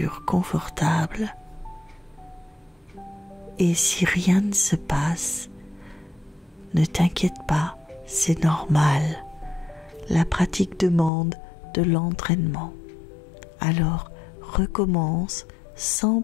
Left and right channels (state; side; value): drops out; right; at 11.1 s